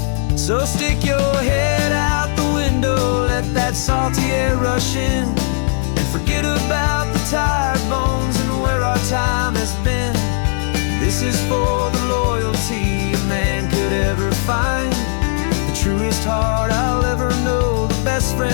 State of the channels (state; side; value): silent; right; digital silence